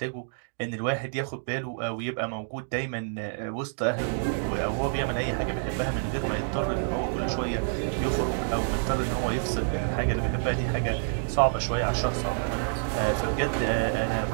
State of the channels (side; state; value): left; silent; digital silence